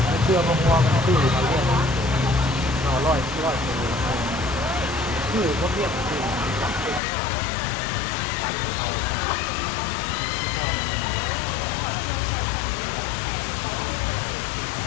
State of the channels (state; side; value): drops out; right; at 7.0 s